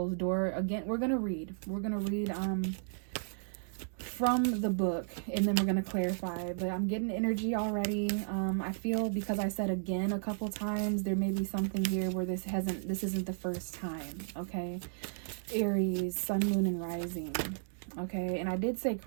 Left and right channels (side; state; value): left; silent; digital silence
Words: door. Again, we're going to read from the book, and then we're going to clarify. But I'm getting energy already. I feel, because I said again a couple times, there may be something here where this isn't the first time, okay? Aries, Sun, Moon, and Rising. Okay, and I did say